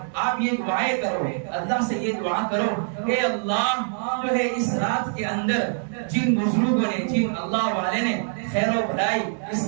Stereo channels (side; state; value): left; silent; digital silence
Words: آپ یہ دعائیں کرو، اللہ سے یہ دعا کرو کہ اللہ جو ہے اس رات کے اندر جن بزرگوں نے جن اللہ والے نے خیر و بھلائی اس